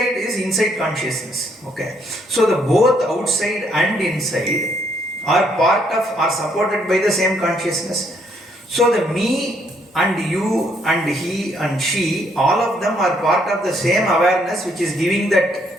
is inside consciousness, okay? So the both outside and inside are supported by the same consciousness. So the me and you and he and she, all of them are part of the same awareness which is giving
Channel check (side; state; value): both; normal; correlation 0.70